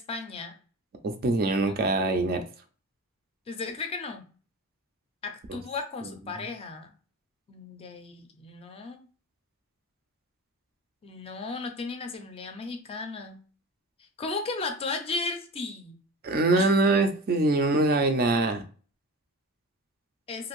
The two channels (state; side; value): normal; both; correlation 0.33